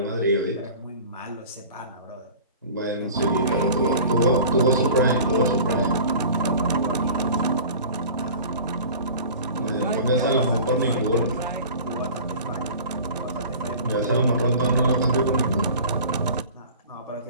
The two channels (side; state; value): both; inverted; correlation -0.41